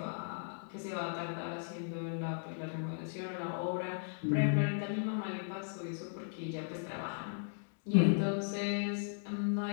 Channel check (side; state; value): right; silent; digital silence